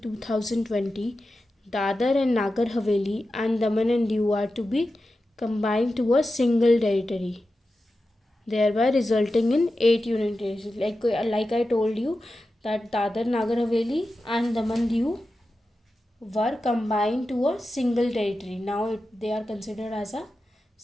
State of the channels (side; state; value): both; normal; correlation 0.92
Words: 2020, Dadar and Nagar Haveli and Daman and Diu are to be combined to a single territory, thereby resulting in 8 union territories. Like I told you that Dadar, Nagar Haveli and Daman Diu were combined to a single territory. Now they are considered as a